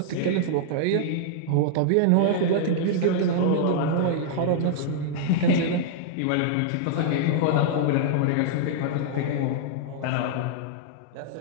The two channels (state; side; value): different; both; correlation -0.01